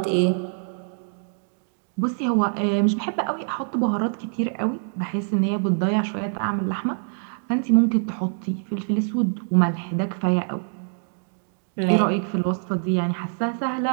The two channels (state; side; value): silent; left; 62 dB below the other